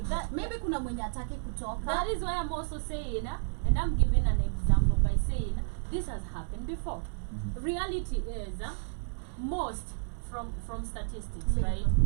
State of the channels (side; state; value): left; silent; 57 dB below the other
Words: Maybe kuna mwenye ataki kutoka. That is why I'm also saying, and I'm giving an example by saying this has happened before. Reality is most from statistics, Leave. right?